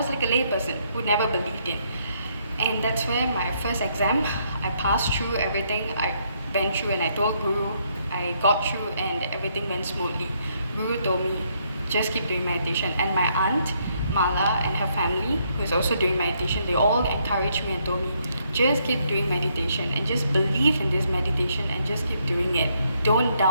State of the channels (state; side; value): inverted; both; correlation -0.73